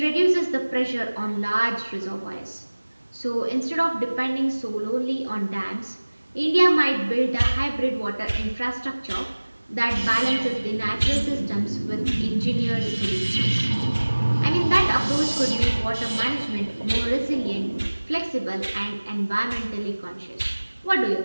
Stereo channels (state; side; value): inverted; both; correlation -1.00